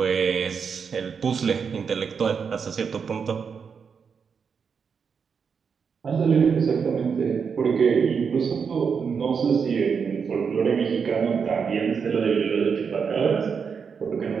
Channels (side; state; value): left; quieter; 6.2 dB